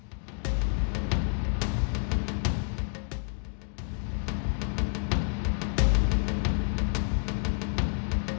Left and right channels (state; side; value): silent; right; 58 dB below the other